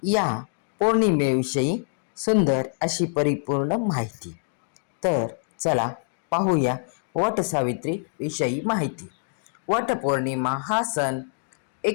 या पौर्णिमेविषयी सुंदर अशी परिपूर्ण माहिती. तर चला पाहूया वटसावित्री विषयी माहिती. वटपौर्णिमा हा सण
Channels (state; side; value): silent; right; digital silence